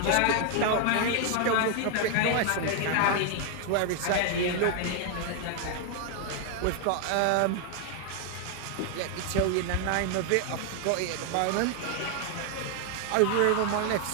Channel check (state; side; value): different; both; correlation 0.00